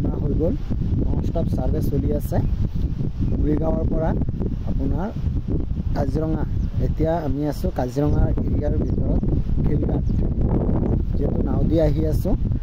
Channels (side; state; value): both; identical; correlation 1.00